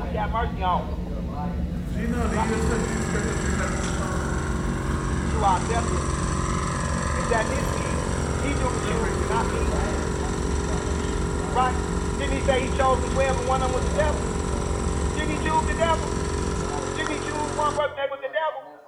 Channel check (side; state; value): both; identical; correlation 1.00